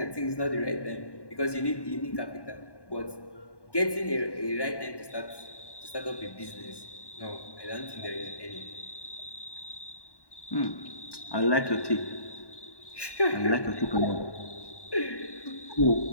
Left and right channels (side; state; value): right; late; 1.1 ms